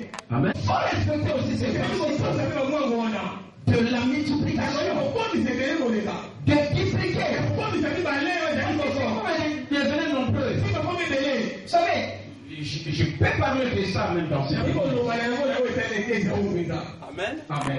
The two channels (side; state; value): both; identical; correlation 1.00